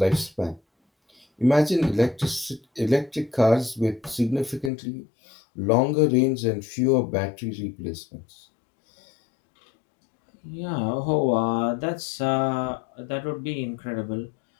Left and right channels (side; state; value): right; drops out; at 4.7 s